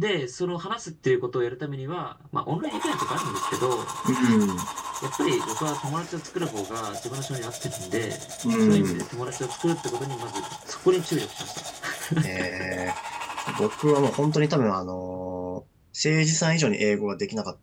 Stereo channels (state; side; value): identical; both; correlation 1.00